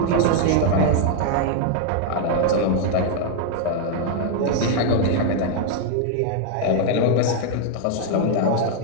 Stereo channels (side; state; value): both; different; correlation 0.00